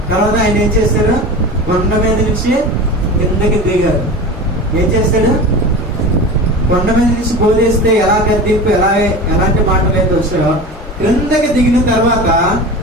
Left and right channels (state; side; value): normal; both; correlation 0.31